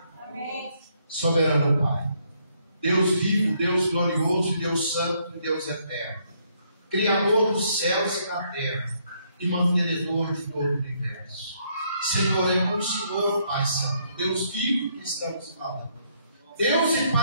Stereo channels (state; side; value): inverted; both; correlation -0.71